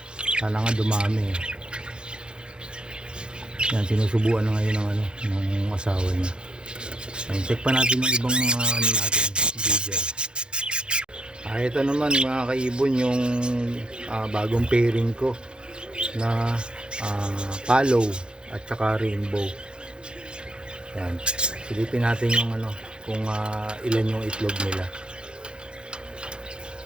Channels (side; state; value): left; late; 0.051 ms